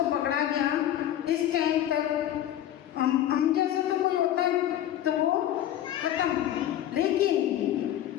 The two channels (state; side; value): quieter; right; 11.9 dB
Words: पकड़ा गया, इस टाइम तक हम जैसा तो कोई होता तो वो खत्म, लेकिन